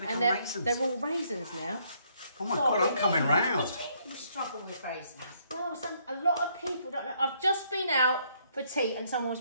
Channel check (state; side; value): inverted; both; correlation -0.69